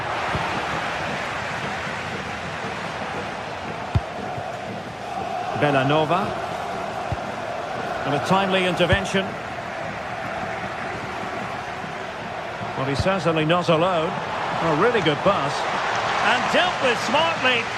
Bellanova. And a timely intervention. Well, he's certainly not alone. A really good pass. And dealt with smartly.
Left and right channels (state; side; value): identical; both; correlation 1.00